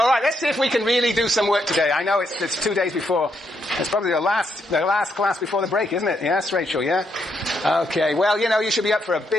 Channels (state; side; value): normal; both; correlation 0.78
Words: let's see if we can really do some work today. I know it's 2 days before. It's probably the last class before the break, isn't it? Yes, Rachel, yeah? Okay, well, you should be up for a